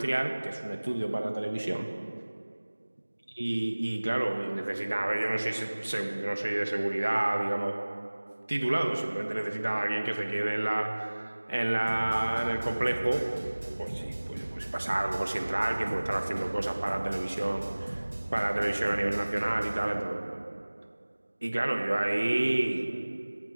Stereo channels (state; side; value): inverted; both; correlation -1.00